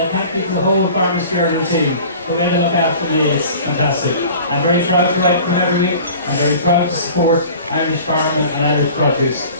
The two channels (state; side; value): inverted; both; correlation -0.44